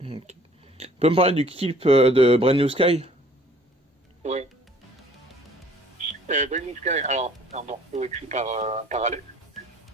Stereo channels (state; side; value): normal; both; correlation 0.55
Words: Tu peux me parler du clip de Brand New Sky? Ouais. Brand New Sky, alors c'est un morceau écrit par Alex.